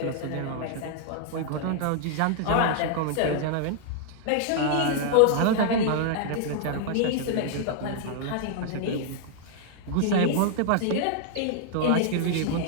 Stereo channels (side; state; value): both; different; correlation 0.00